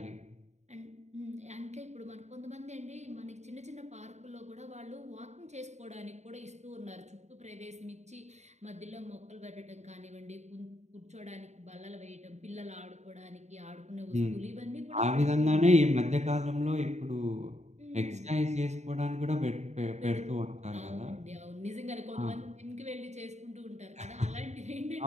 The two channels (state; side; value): late; left; 0.33 ms